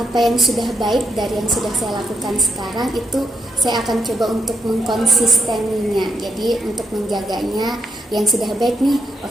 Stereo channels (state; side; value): normal; both; correlation 0.80